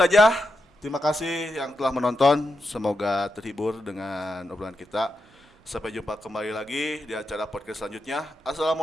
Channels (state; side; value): normal; both; correlation 0.86